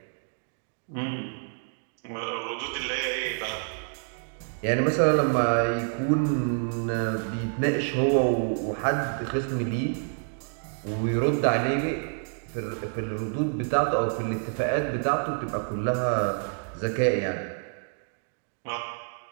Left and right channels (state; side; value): silent; left; 59 dB below the other